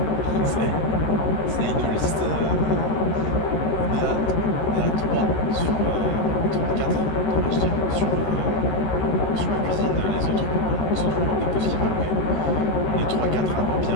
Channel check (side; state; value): right; late; 13 ms